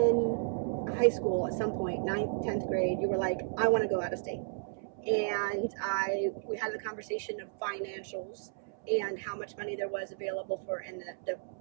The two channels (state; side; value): silent; left; 56 dB below the other